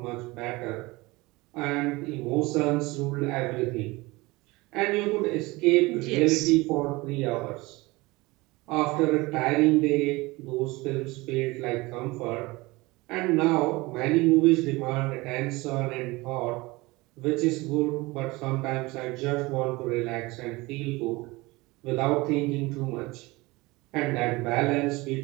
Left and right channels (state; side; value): quieter; left; 22.4 dB